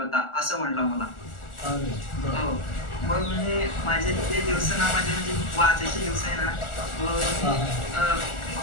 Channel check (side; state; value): right; late; 1.4 ms